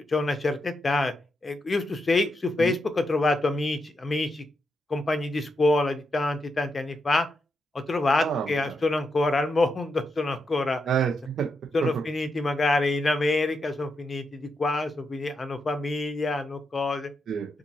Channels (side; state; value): both; normal; correlation 0.83